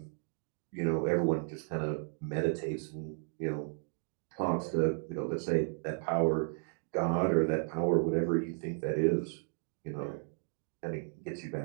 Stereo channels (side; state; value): left; silent; 55 dB below the other